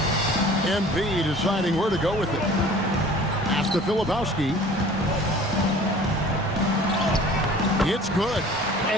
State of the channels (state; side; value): normal; both; correlation 0.47